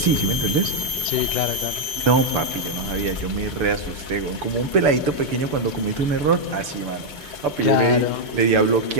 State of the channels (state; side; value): late; left; 6.8 ms